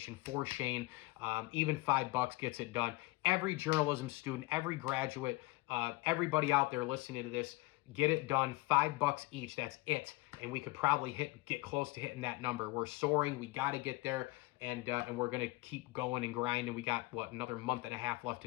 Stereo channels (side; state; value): right; quieter; 21.3 dB